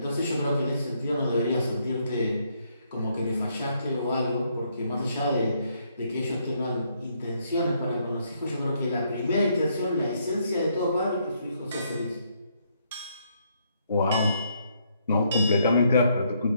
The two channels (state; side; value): inverted; both; correlation -0.73